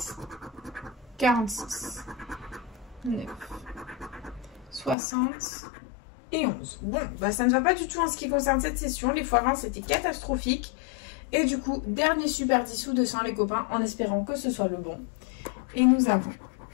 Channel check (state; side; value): drops out; right; at 5.0 s